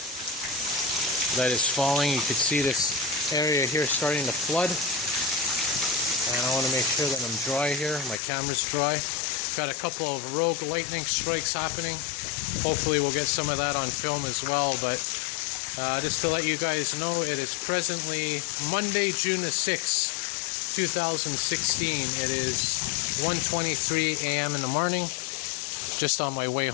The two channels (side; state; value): right; drops out; at 8.2 s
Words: that is falling. You can see this area here starting to flood. And I want to make sure that I'm dry here. My camera's dry. Got a couple of rogue lightning strikes happening. Hopefully we'll get some of that on film as well. But just to let you guys know, it is presently Monday, June the 6th, 2016. It is 1:23 a.m. in the morning. Just on my way